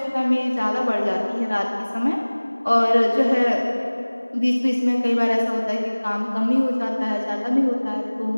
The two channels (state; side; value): inverted; both; correlation -1.00